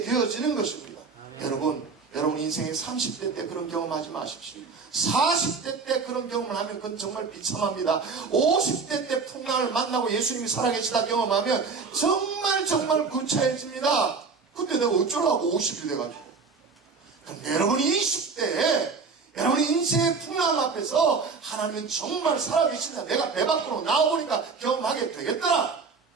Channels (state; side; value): quieter; left; 4.8 dB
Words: 되어지는 것입니다. 여러분 인생의 30대 때 그런 경험하지 마십시오. 40대 때 그런 경험을 하면 그건 정말 비참합니다. 50대 때 풍랑을 만나고 예수님이 살아계시다 경험하면 정말 구차해집니다. 근데 내가 어쩌라고 50이 돼가지고. 근데 여러분이 20대에 여러분이 인생의 풍랑 앞에서 하나님은 정말 살아계신다, 내가 배 밖으로 나와보니까 경험하게 되겠더라,